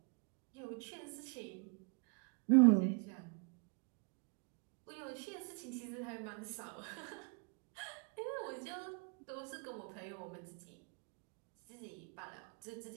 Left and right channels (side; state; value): left; quieter; 36.4 dB